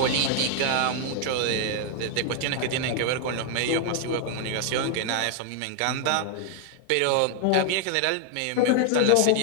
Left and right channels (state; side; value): different; both; correlation 0.00